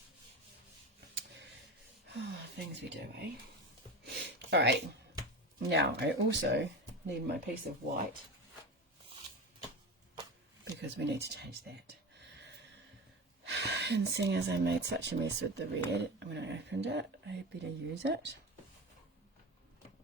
Oh, things we do, eh? Alright, now I also need my piece of white because we need to change that. And seeing as I made such a mess with the red when I opened it, I better use it.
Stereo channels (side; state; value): both; normal; correlation 0.26